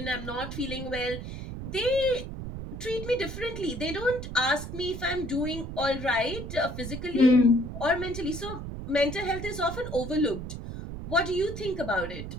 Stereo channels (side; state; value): right; noise; rumble, 8 dB below the sound